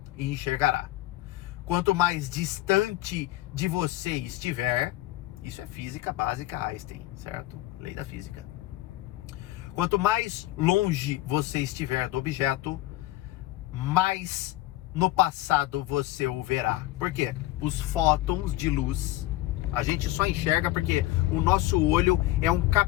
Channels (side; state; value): right; quieter; 16.5 dB